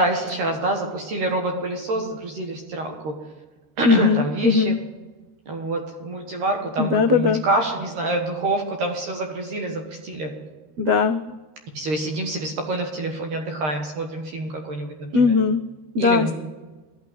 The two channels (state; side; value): late; left; 13 ms